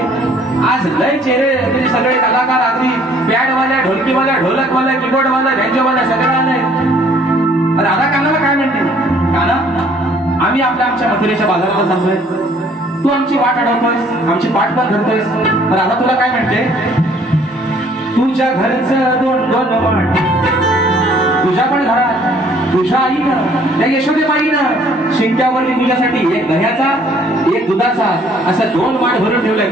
आज लय चेहरे म्हणजे सगळे कलाकार आगरी बँडवाल्या ढोलकीवाल्या ढोलकवाल्या कीबोर्डवाल्या बँजोवाल्या सगळे आले दादा कानाला काय म्हणते काना आम्ही आमच्या मथुरेच्या बाजाराला चाललोय तू आमची वाट अडवतोयस आमची पाठ पण धरतोयस तर आता तुला काय म्हणते तुझ्या घरचं दोन दोन माठ तुझ्या पण घरात तुझ्या आईनं त्या यशोदेबाईनं शिंक्यावरती तुझ्यासाठी एक दह्याचा एक दुधाचा असं दोन माठ भरून ठेवलंय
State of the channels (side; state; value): both; normal; correlation 0.60